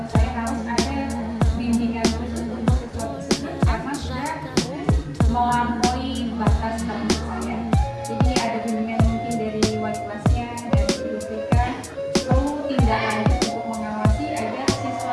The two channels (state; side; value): identical; both; correlation 1.00